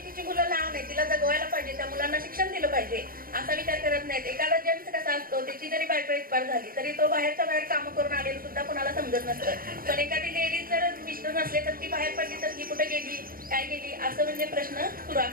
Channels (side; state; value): left; late; 0.42 ms